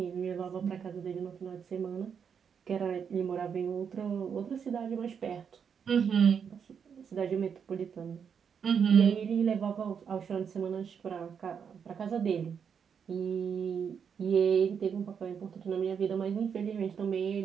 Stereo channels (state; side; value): quieter; left; 7.1 dB